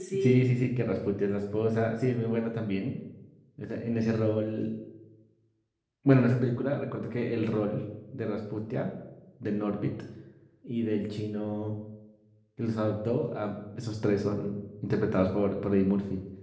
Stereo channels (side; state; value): both; identical; correlation 1.00